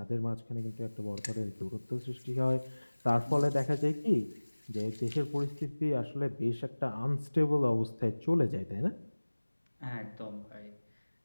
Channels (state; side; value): inverted; both; correlation -1.00